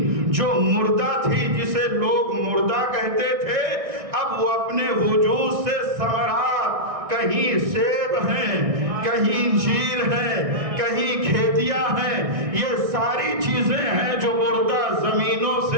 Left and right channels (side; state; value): left; late; 1.6 ms